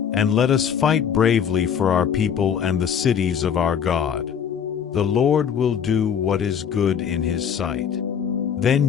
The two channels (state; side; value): quieter; right; 7.9 dB